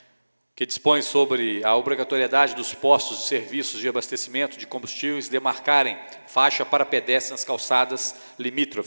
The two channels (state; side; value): inverted; both; correlation -1.00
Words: que dispõe sobre a obrigatoriedade dos postos de serviços de abastecimento de combustíveis demarcarem faixa para pedestres nas calçadas